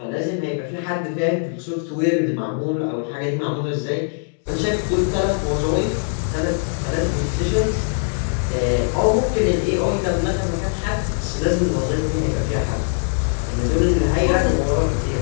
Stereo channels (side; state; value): right; silent; digital silence